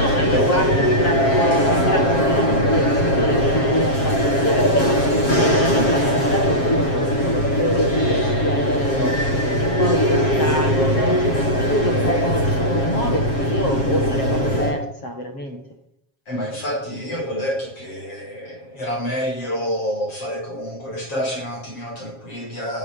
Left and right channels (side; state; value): right; late; 7.4 ms